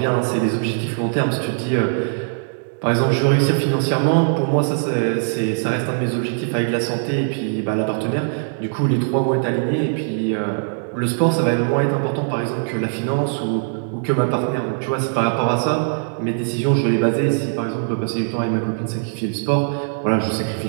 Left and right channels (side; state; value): left; silent; digital silence